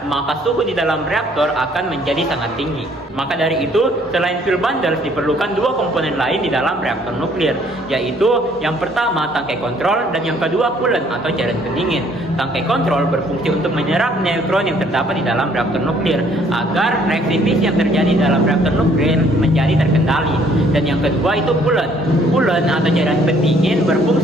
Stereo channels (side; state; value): both; normal; correlation 0.62